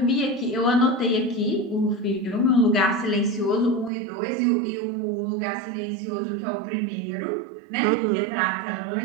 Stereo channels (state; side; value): drops out; left; at 3.9 s